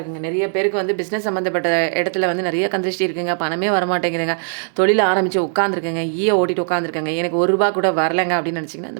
நிறைய பேருக்கு வந்து பிஸ்னஸ் சம்மந்தப்பட்ட இடத்துல வந்து நிறைய கந்திருஷ்டி இருக்குங்க. பணமே வரமாட்டேங்குதுங்க. தொழில் ஆரம்பித்து உட்காந்துருக்கேங்க, ஓட்டிட்டு உட்காந்துருக்கேங்க, எனக்கு ₹1 கூட வரலைங்க அப்படின்னு நினச்சிங்கன்னா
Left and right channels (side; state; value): left; silent; digital silence